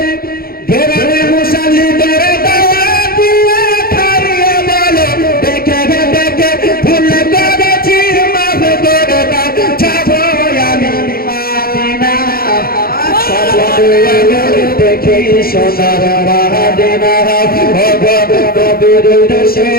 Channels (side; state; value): right; late; 0.44 ms